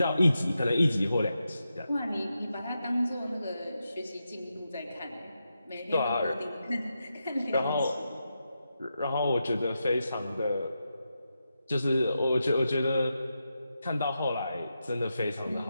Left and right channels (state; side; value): inverted; both; correlation -0.87